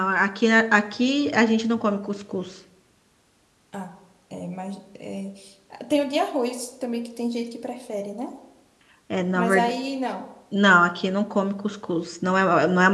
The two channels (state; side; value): identical; both; correlation 1.00